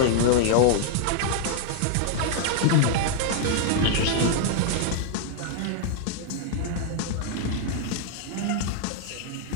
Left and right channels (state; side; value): different; both; correlation 0.00